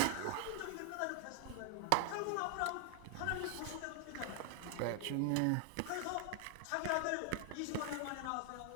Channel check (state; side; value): different; both; correlation 0.00